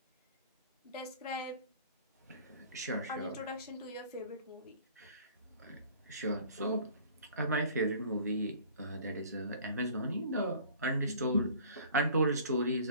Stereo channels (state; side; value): inverted; both; correlation -0.49